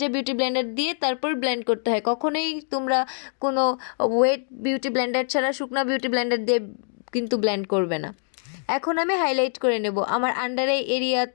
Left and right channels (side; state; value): right; silent; digital silence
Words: বিউটি ব্লেন্ডার দিয়ে তারপর ব্লেন্ড করতে হয়। কখনোই তোমরা কোনো ওয়েট বিউটি ব্লেন্ডার ছাড়া শুকনো বিউটি ব্লেন্ডার দিয়ে কিন্তু ব্লেন্ড করবে না। এখন আমি হাইলাইট করে নেব আমার আন্ডার আই